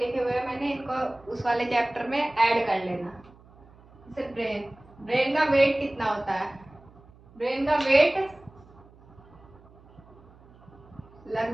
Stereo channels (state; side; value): noise; right; hum, 25 dB below the sound